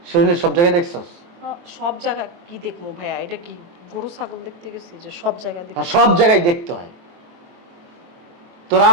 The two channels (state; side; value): late; left; 23 ms